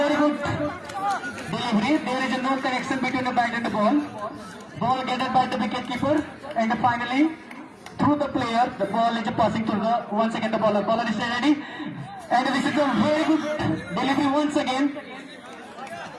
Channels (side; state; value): both; identical; correlation 1.00